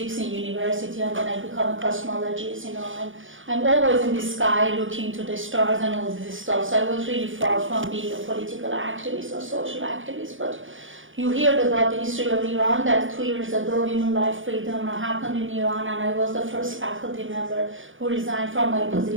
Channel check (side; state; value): left; late; 0.57 ms